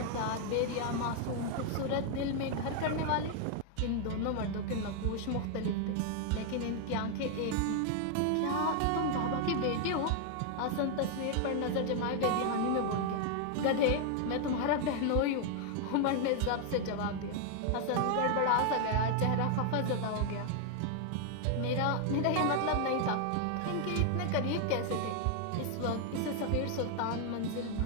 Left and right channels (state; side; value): different; both; correlation 0.00